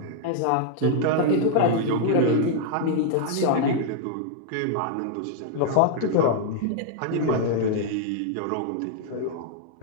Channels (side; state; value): both; different; correlation -0.01